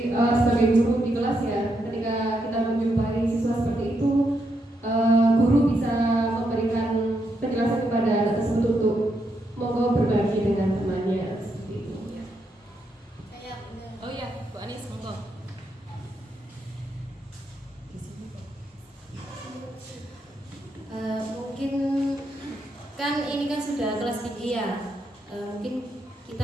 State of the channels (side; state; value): both; normal; correlation 0.80